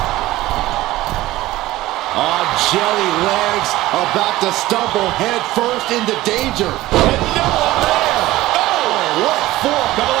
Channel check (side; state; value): left; quieter; 17.0 dB